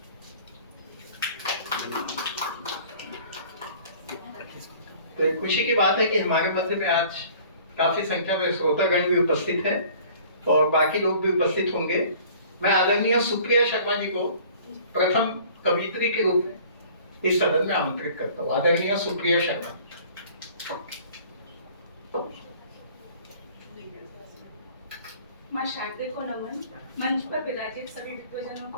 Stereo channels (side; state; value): both; inverted; correlation -0.50